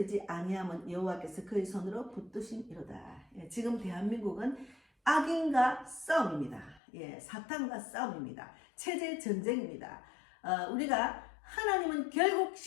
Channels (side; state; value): right; drops out; at 6.8 s